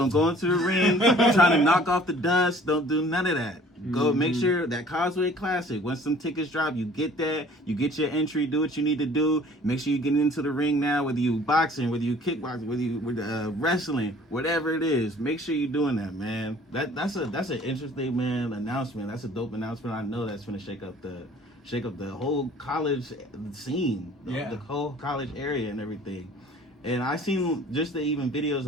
go into the ring trying to knock off the dust. Don't do none of that. Go make sure that Causeway Classic, once some tickets drop, you get that. You get your entry, do what you need to do. Make sure you get into the ring now, whether you boxing, whether you kickboxing, whether you wrestling, whatever it is. Make sure you're doing that, man. That's an interesting, man, announcement. That's a dope announcement. I know that's gonna shake up the whole college scene, the whole college area and everything. And I seen just the even videos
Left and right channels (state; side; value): normal; both; correlation 0.52